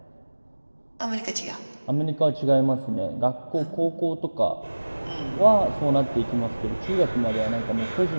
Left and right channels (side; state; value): both; inverted; correlation -1.00